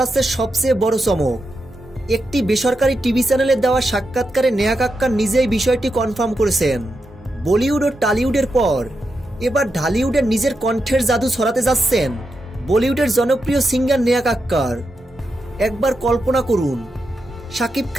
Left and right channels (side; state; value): both; normal; correlation 0.87